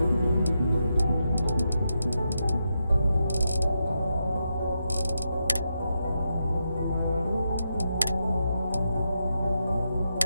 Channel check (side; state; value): both; inverted; correlation -0.85